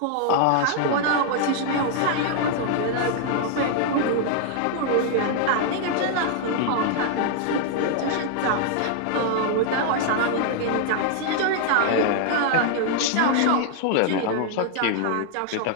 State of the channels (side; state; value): both; different; correlation 0.00